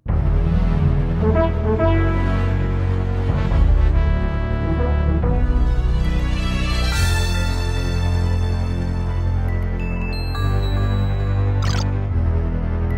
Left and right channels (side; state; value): both; identical; correlation 1.00